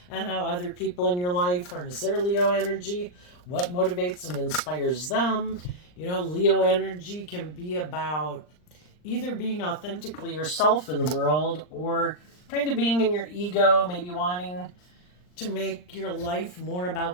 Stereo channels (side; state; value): right; late; 39 ms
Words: and how other people in your life harness their Leo energy, what motivates and inspires them. Leo energy can be about either being authentically yourself in the world or kind of being in your ego, maybe wanting to make your life more